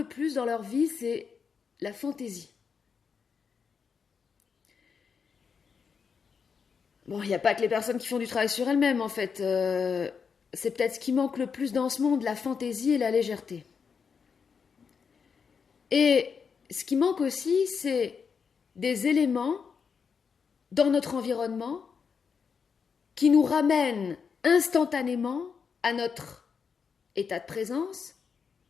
plus dans leur vie, c'est la fantaisie. Bon, il n'y a pas que les personnes qui font du travail sur elles-mêmes, en fait. C'est peut-être ce qui manque le plus dans ce monde, la fantaisie et la légèreté. Et ce qui manque aussi, c'est des éléments dans notre environnement qui nous ramènent instantanément à notre état de présence,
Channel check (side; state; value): right; quieter; 6.1 dB